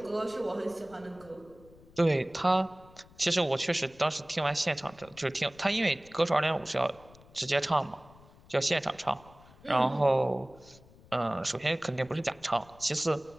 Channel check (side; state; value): left; noise; rumble, 24 dB below the sound